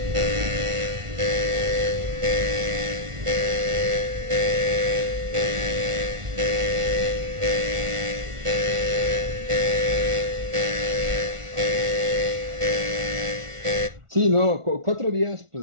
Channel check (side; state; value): left; late; 1.4 ms